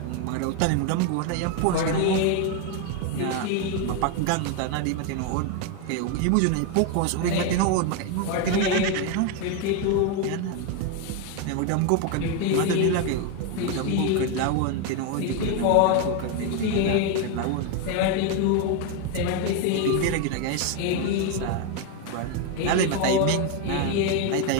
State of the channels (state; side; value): different; both; correlation 0.01